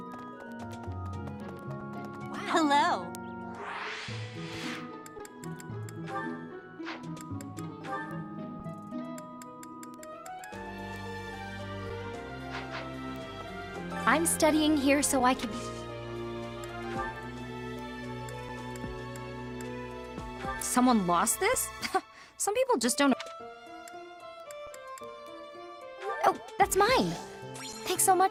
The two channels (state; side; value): identical; both; correlation 1.00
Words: Hello. I'm studying here so I can... Someone lost this? Some people just don't... Oh, that's mine! Thanks so